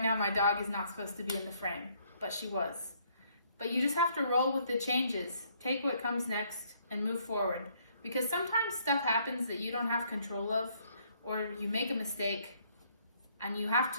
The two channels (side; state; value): both; inverted; correlation -0.67